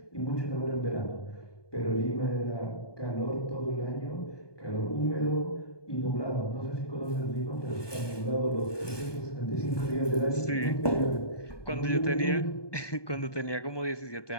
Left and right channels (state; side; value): late; right; 1.2 ms